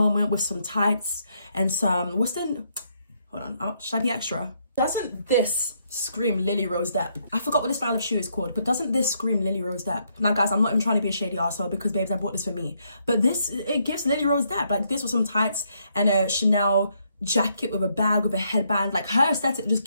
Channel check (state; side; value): inverted; both; correlation -0.74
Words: with some tights and some, hold on, should I be extra? Doesn't this scream Lily Rose Depp? I forgot what this style of shoe is called, but doesn't this scream Lily Rose Depp? Now guys, I'm not even trying to be a shady arsehole because babes, I bought this for me. But it gives Lily Rose Depp, like this with some tights and a Chanel jacket with a bag, with a headband. Like her aesthetic just